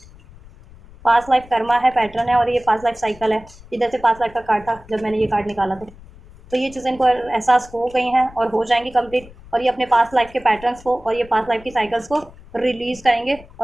पास लाइफ कर्मा है, पैटर्न है, और ये पास लाइफ साइकिल है, इधर से पास लाइफ का कार्ड था जब मैंने ये कार्ड निकाला था, तो ये चीज़ें इनको एहसास हो गई हैं और हो जाएंगी कंप्लीट, और ये अपने पास लाइफ के पैटर्न्स को और ये पास लाइफ की साइकिल्स को रिलीज़ करेंगे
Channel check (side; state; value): left; noise; rumble, 21 dB below the sound